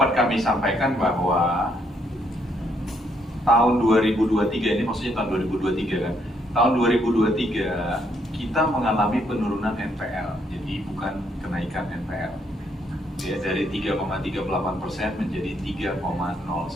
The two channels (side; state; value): both; normal; correlation 0.72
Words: kami sampaikan bahwa tahun 2023 ini, maksudnya tahun 2023 kan, tahun 2023 kita mengalami penurunan NPL, jadi bukan kenaikan NPL. Ya, dari 3,38% menjadi